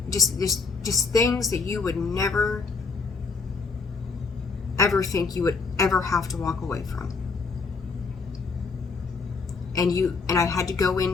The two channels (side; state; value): right; quieter; 4.6 dB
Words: just things that you would never ever think you would ever have to walk away from. And I had to go